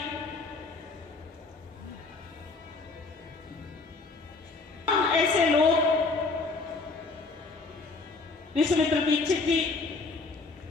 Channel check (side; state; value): right; quieter; 3.8 dB